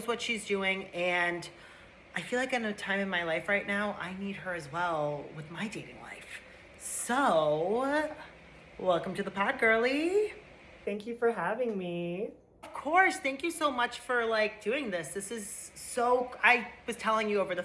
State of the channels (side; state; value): both; identical; correlation 1.00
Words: what she's doing, and I feel like in a time in my life right now, I need her as well with my dating life. So, welcome to the pod, girly. Thank you for having me. Of course. Thank you so much for doing this. This is so, I was telling you over the